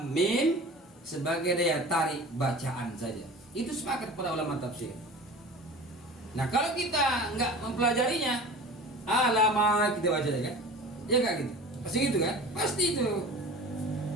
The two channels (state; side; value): normal; both; correlation 0.38